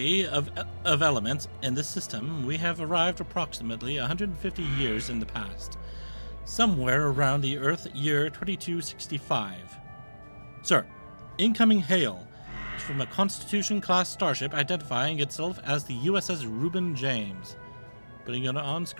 of elements in this system, we have arrived approximately 150 years in the past, somewhere around the Earth year 2265. Sir, incoming hail is from a Constitution-class starship identifying itself as the USS Reuben James. Putting it on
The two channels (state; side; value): inverted; both; correlation -1.00